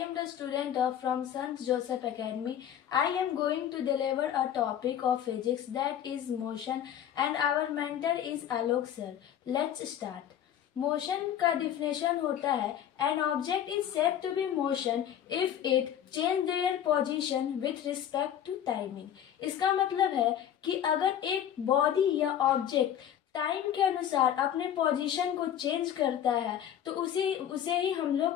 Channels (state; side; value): quieter; right; 10.1 dB